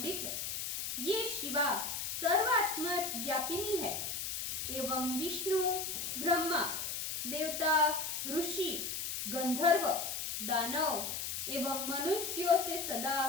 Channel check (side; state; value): left; noise; hiss, 3 dB below the sound